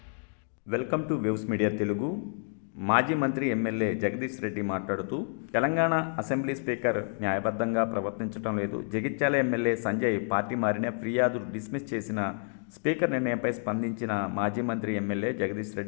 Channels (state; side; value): silent; right; 58 dB below the other